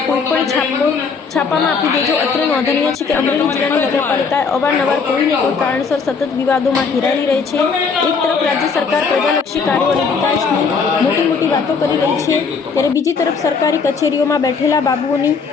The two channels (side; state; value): right; quieter; 5.2 dB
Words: કોઈ પણ છાપામાં આપી દેજો। અત્રે નોંધનીય છે કે અમરેલી જિલ્લાની નગરપાલિકાએ અવારનવાર કોઈને કોઈ કારણસર સતત વિવાદોમાં ઘેરાયેલી રહે છે। એક તરફ રાજ્ય સરકાર પ્રજાલક્ષી કાર્યો અને વિકાસની મોટી વાતો કરી રહી છે, ત્યારે બીજી તરફ સરકારી કચેરીઓમાં બેઠેલા બાબુઓની